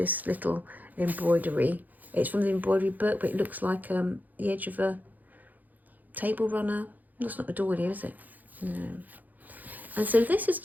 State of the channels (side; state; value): left; late; 0.082 ms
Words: little embroidery. It's from the embroidery book, but it looks like the edge of a table runner. That's not a doily, is it? No. And so this is